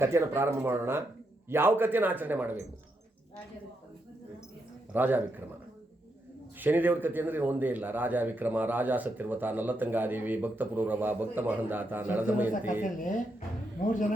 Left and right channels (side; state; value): both; normal; correlation 0.81